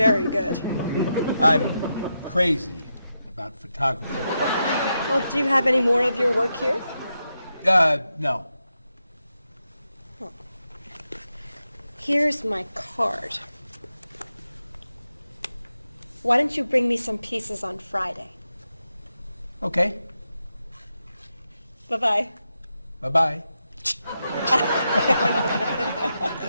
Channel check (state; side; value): inverted; both; correlation -0.86